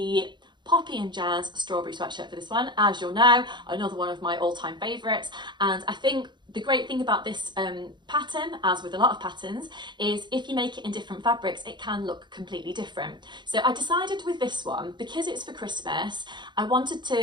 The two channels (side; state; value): left; late; 0.22 ms